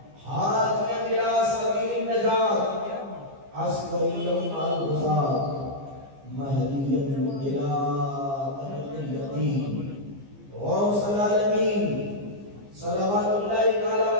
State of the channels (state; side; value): late; left; 15 ms